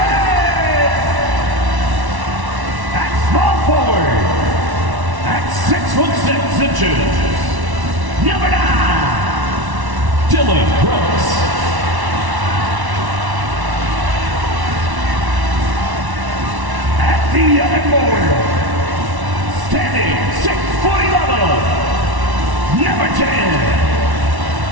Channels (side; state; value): left; late; 1.1 ms